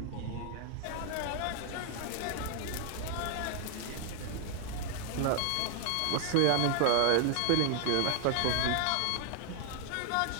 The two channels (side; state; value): both; different; correlation -0.01